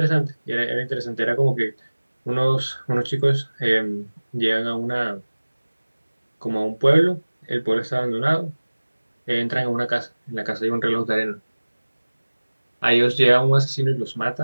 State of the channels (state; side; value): inverted; both; correlation -1.00